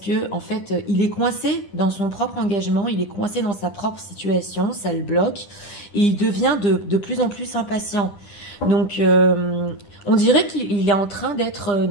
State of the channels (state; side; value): late; right; 10 ms